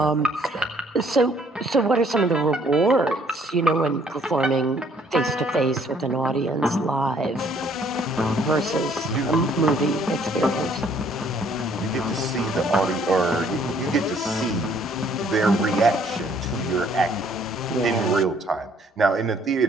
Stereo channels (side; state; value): both; normal; correlation 0.63